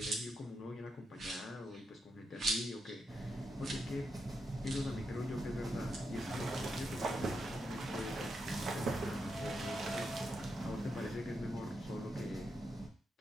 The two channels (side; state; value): both; normal; correlation 0.84